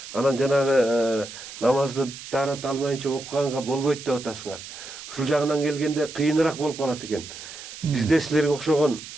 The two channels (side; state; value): right; noise; hiss, 13 dB below the sound